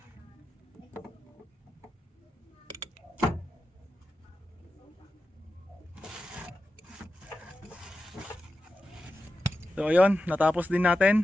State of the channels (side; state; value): both; normal; correlation 0.91